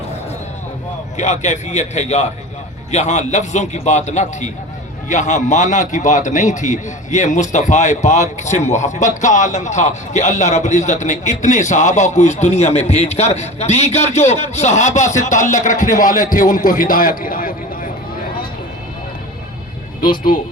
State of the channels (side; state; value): both; normal; correlation 0.33